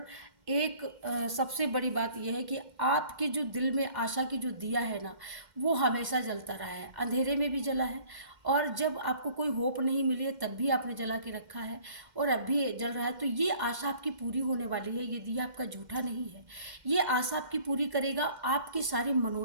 एक सबसे बड़ी बात यह है कि आपके जो दिल में आशा की जो दिया है ना, वो हमेशा जलता रहा है, अंधेरे में भी जला है, और जब आपको कोई होप नहीं मिली है तब भी आपने जला के रखा है, और अब भी जल रहा है। तो ये आशा आपकी पूरी होने वाली है, ये दिया आपका झूठा नहीं है, ये आशा आपकी पूरी करेगा, आपकी सारी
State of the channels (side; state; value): left; late; 2.1 ms